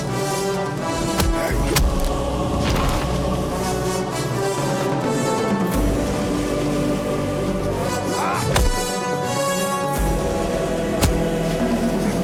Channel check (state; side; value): identical; both; correlation 1.00